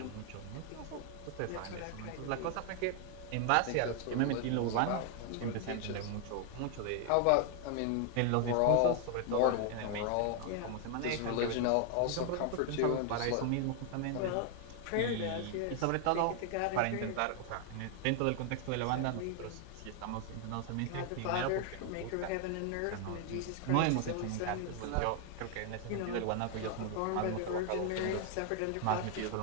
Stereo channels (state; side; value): different; both; correlation 0.00